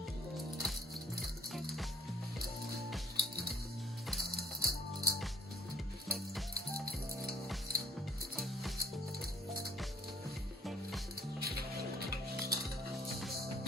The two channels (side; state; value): both; normal; correlation 0.61